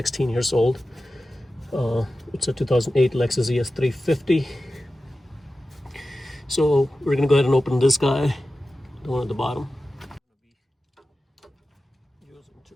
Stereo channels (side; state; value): both; normal; correlation 0.94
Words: years old. It's a 2008 Lexus ES350. So we're gonna go ahead and open this guy, the one at the bottom.